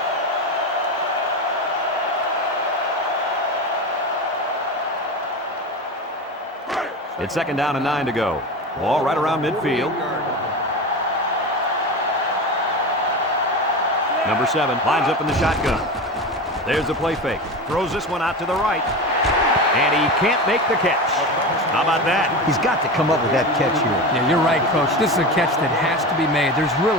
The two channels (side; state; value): both; normal; correlation 0.25